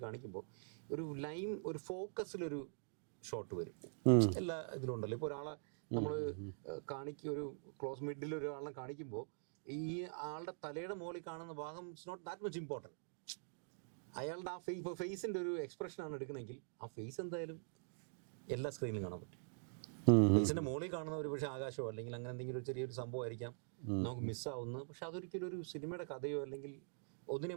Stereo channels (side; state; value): left; silent; digital silence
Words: കാണിക്കുമ്പോൾ ഒരു ഫോക്കസിലൊരു ഷോട്ട് വരും. എല്ലാ ഇതിലും ഉണ്ടല്ലോ. ഇപ്പോൾ ഒരാളെ നമ്മൾ ഒരു ക്ലോസ് മിഡിൽ ഒരാളെ കാണിക്കുമ്പോൾ ഈ ആളുടെ തലയുടെ മുകളിൽ കാണുന്ന ഭാഗം it's not that much important. അയാളുടെ ആ ഇപ്പോൾ ഫേസിൻ്റെ ഒരു എക്സ്പ്രഷനാണ് എടുക്കണമെങ്കിൽ ആ ഫേസ് എന്തായാലും എല്ലാ സ്ക്രീനിലും കാണാൻ പറ്റും. ഫേസിൻ്റെ മുകളിൽ കാണുന്ന ഒരു പക്ഷേ ആകാശമോ അല്ലെങ്കിൽ അങ്ങനെ എന്തെങ്കിലും ഒരു ചെറിയൊരു സംഭവമായിരിക്കാം നമുക്ക് മിസ്സാവുന്നത്. പക്ഷെ അതൊരിക്കലും ഒരു സിനിമയുടെ കഥയോ അല്ലെങ്കിൽ